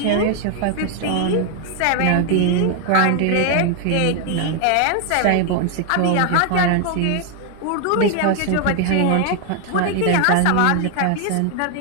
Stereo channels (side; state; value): both; different; correlation 0.00